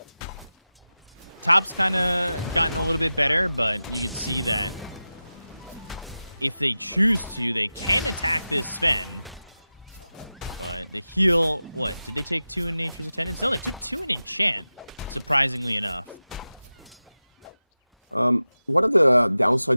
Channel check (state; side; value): inverted; both; correlation -0.95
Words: Top's kind of gotten a little bit better, but you can see that if they choose to, they can attack this Sven. But the heal, what? Did they take 2 in Nature's Attendance? No, they took 2 in Enchant, surprisingly enough. One of the